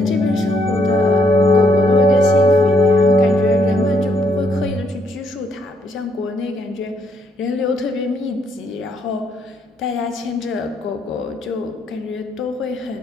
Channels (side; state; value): both; normal; correlation 0.71